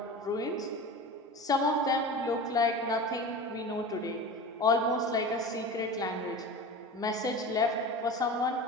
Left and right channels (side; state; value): both; normal; correlation 0.32